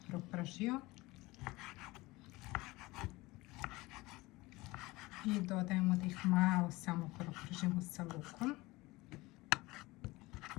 propržio. I dodajemo da ih malo samo propržimo sa lukom.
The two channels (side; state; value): right; quieter; 21.1 dB